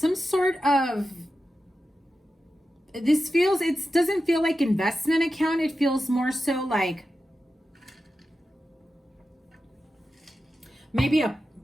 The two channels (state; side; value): normal; both; correlation 0.91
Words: sort of, this feels, it doesn't feel like investment account. It feels more so like maybe a